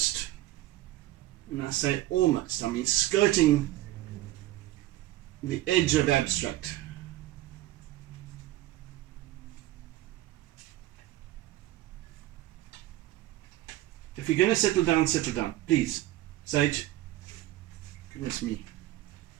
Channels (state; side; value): quieter; left; 15.7 dB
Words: and I say almost, I mean skirting the edge of abstract. If you're going to settle down, please. Sage. Goodness me.